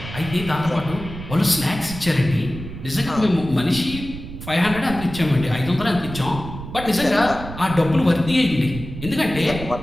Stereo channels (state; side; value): noise; right; rumble, 11 dB below the sound